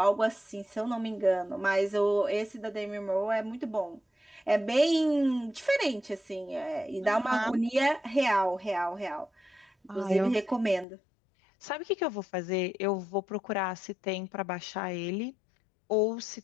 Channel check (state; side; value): drops out; right; at 10.9 s